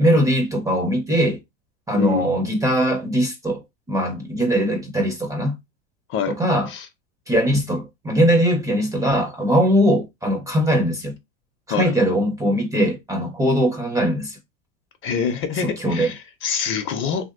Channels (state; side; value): normal; both; correlation 0.55